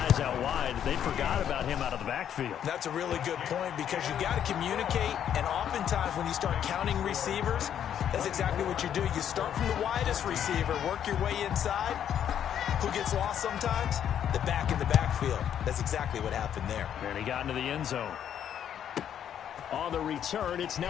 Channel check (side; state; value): right; quieter; 9.5 dB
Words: out wide, they forgot about him out of the backfield. That's a really good point because you got to communicate, and oftentimes when you start counting receivers, that's exactly what you do. You start from the widest receiver, work your way inside. Who gets lost sometimes? The back in the backfield. That's exactly what happened there. And he got into the end zone. On the return, it's